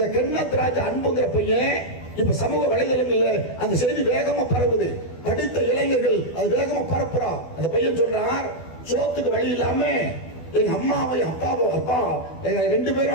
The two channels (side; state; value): right; late; 12 ms